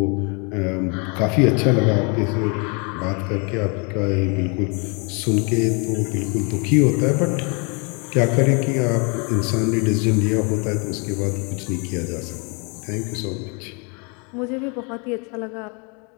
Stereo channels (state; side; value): quieter; right; 34.1 dB